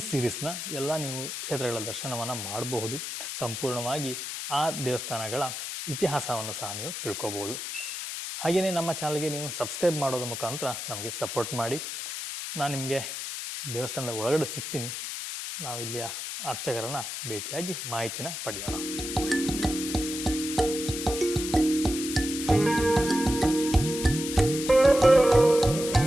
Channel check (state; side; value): noise; left; hiss, 6 dB below the sound